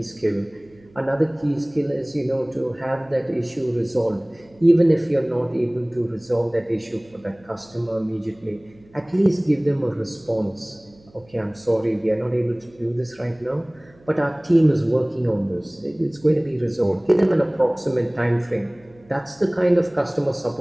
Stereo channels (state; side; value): noise; right; hum, 28 dB below the sound